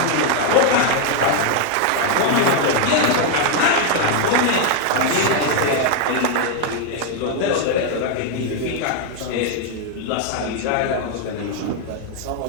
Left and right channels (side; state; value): both; different; correlation 0.00